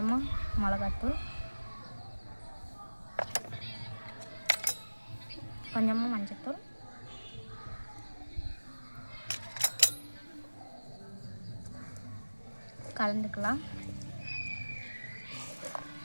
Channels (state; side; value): inverted; both; correlation -1.00